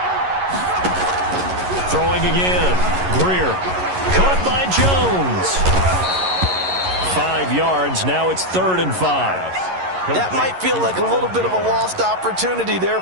Throwing again. Greer. Caught by Jones. 5 yards. Now it's 3rd and 5. That might feel like a little bit of a lost opportunity there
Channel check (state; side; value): late; left; 11 ms